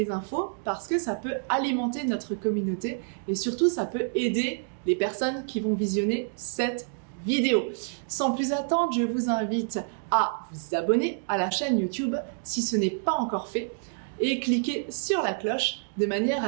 infos parce que ça peut alimenter notre communauté et surtout ça peut aider les personnes qui vont visionner cette vidéo. Sans plus attendre, je vous invite à vous abonner à la chaîne YouTube si ce n'est pas encore fait et cliquer sur la cloche de manière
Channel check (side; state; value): left; silent; digital silence